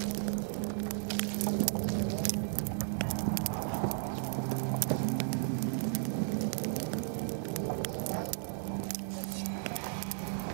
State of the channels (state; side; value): silent; left; 55 dB below the other